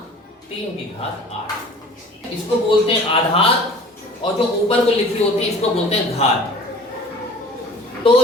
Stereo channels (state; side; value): normal; both; correlation 0.46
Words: 3 की घात 8। इसको बोलते हैं आधार, और जो ऊपर को लिखी होती है इसको बोलते हैं घात। तो